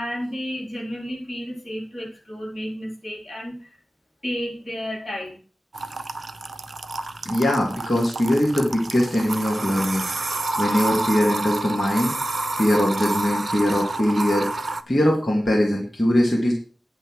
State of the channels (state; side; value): normal; both; correlation 0.94